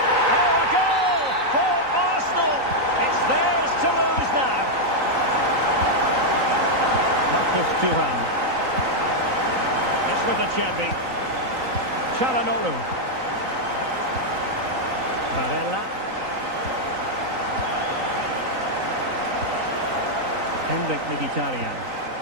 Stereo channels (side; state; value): left; late; 3.9 ms